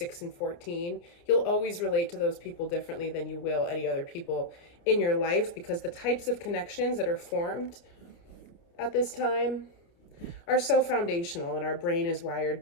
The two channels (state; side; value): late; right; 29 ms